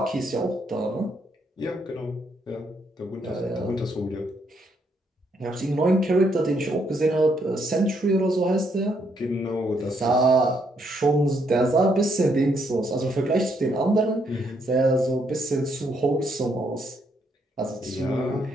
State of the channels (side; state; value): both; normal; correlation 0.74